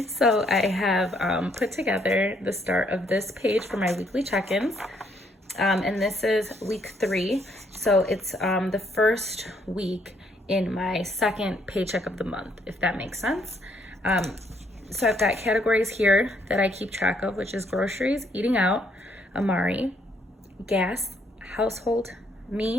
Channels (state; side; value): normal; both; correlation 0.69